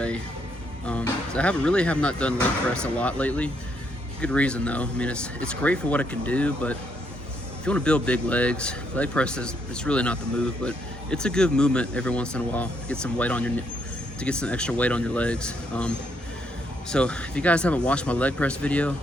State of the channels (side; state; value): both; normal; correlation 0.74